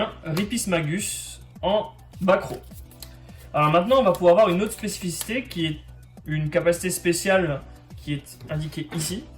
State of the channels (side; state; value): both; identical; correlation 1.00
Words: Ripice Magus en back row. Alors maintenant, on va pouvoir avoir une autre spécificité qui est une capacité spéciale qui est indiquée ici.